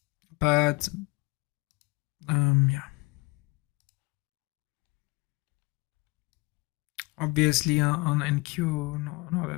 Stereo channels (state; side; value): quieter; right; 25.6 dB